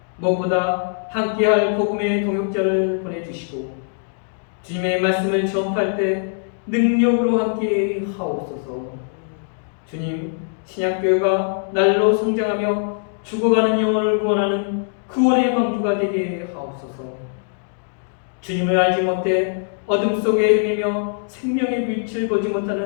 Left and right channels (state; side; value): silent; right; digital silence